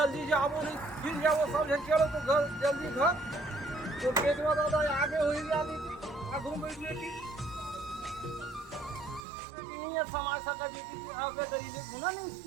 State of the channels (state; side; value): drops out; left; at 9.2 s